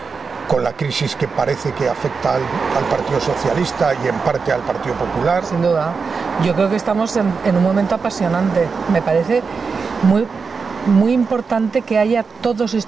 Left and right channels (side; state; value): left; quieter; 5.1 dB